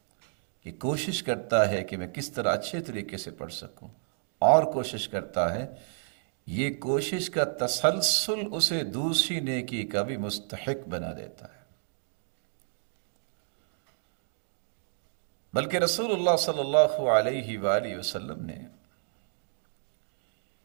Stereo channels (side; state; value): left; silent; digital silence